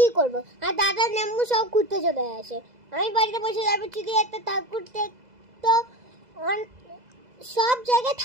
করবো, আর দাদা নেম্বু সব ঘুরতে চলে আসে। আমি বাড়িতে বসে যাবো, চিঠি একটা ঠাকুর দেখতো। সব জায়গায়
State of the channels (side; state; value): left; late; 2.0 ms